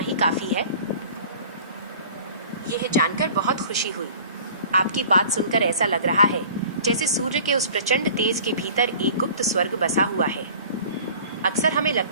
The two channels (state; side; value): inverted; both; correlation -0.45